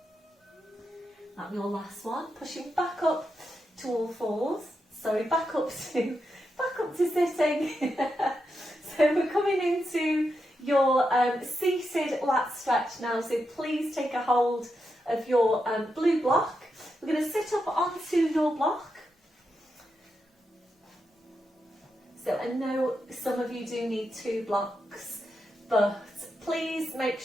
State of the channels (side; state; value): both; normal; correlation 0.86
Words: That'll be your last one. Pushing back up to all fours. Sorry, back up to sitting. So we're coming into your seated lat stretch now. So please take a hold of your blue block. We're going to sit up onto your block. So I know some of you do need 2 blocks, but please make